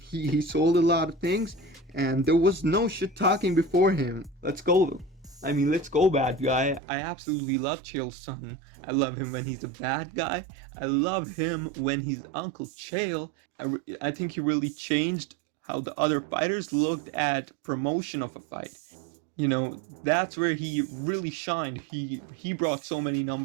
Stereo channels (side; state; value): left; drops out; at 6.8 s